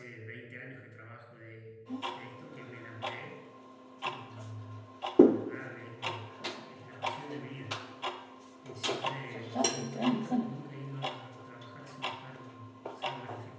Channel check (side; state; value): both; identical; correlation 1.00